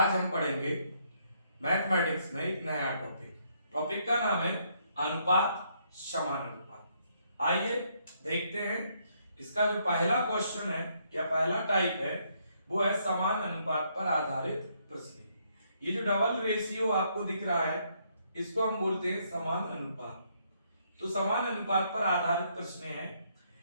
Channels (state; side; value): inverted; both; correlation -0.72